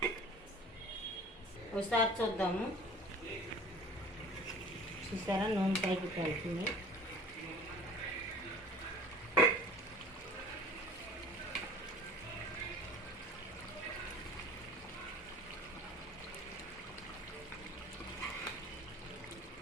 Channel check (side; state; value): both; normal; correlation 0.45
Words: ఒకసారి చూద్దాము. చూసారా నూనె పైకి తేలుతుంది.